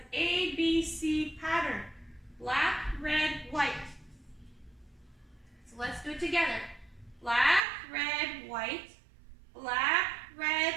ABC pattern. Black, red, white. So let's do it together. Black, red, white. Black, red,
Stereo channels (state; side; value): drops out; left; at 7.6 s